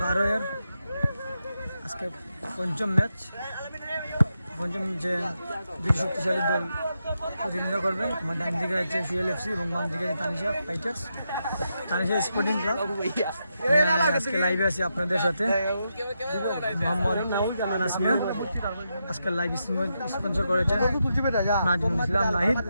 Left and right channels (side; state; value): both; inverted; correlation -0.85